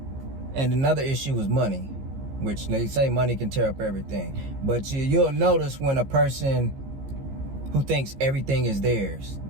And another issue was money, which they say money can tear up everything. But you'll notice when a person who thinks everything is theirs,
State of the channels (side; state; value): left; late; 15 ms